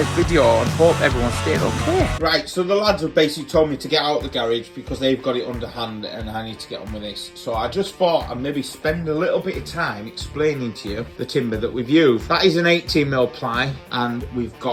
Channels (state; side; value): identical; both; correlation 1.00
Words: video and hope everyone stayed okay. Right, so the lads have basically told me to get out of the garage because they've got it underhand and I need to get on with this. So I just thought I'd maybe spend a little bit of time explaining to you the timber that we've used. That is an 18mm ply and we've